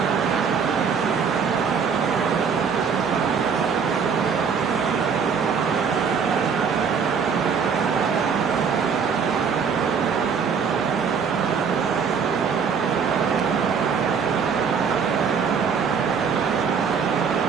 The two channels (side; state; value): left; quieter; 6.3 dB